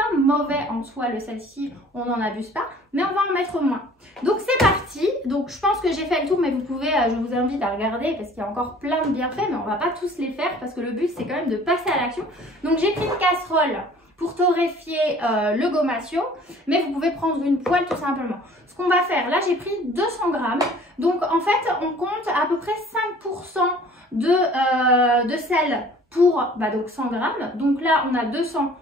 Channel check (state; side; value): normal; both; correlation 0.51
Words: mauvais en soi le sel si on n'en abuse pas, mais on va en mettre moins. Donc c'est parti. Donc je pense que j'ai fait le tour, mais vous pouvez, je vous invite à regarder parce qu'il y a encore plein de bienfaits, mais on va pas tous les faire parce que le but c'est quand même de passer à l'action. Donc j'ai pris une casserole pour torréfier le gomasio, mais vous pouvez prendre une poêle tout simplement. Ce qu'on va faire, là j'ai pris 200 grammes, donc en fait on compte à peu près 5% de sel pour donc 100 grammes. Donc là on a 200,